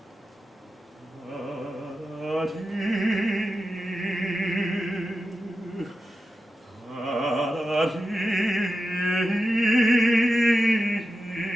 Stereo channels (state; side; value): normal; both; correlation 0.91